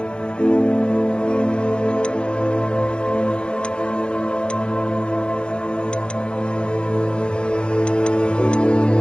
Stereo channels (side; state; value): right; late; 0.051 ms